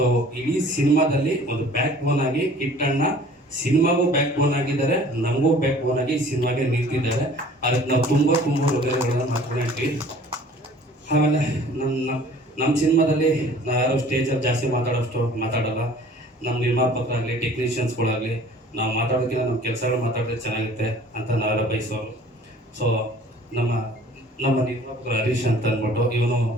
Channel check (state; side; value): normal; both; correlation 0.50